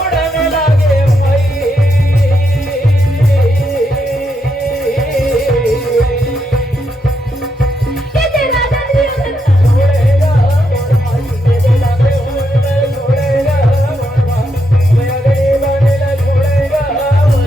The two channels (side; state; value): both; normal; correlation 0.81